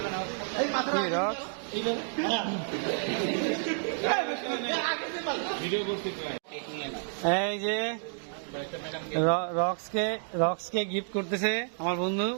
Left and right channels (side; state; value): left; silent; digital silence